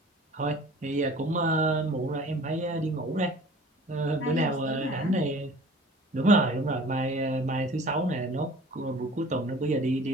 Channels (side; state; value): both; normal; correlation 0.46